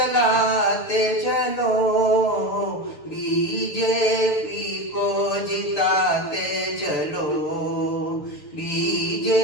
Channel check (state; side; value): late; right; 7.0 ms